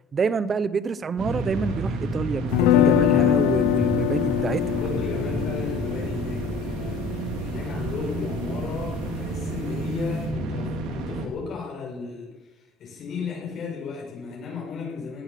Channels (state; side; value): quieter; right; 3.2 dB